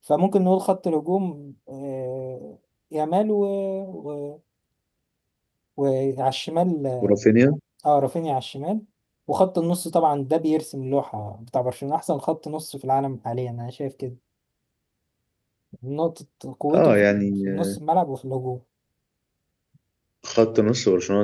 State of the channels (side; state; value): both; identical; correlation 1.00